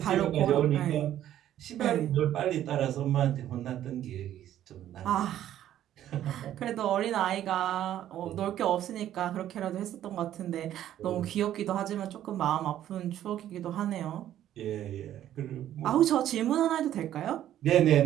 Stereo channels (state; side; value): quieter; left; 11.9 dB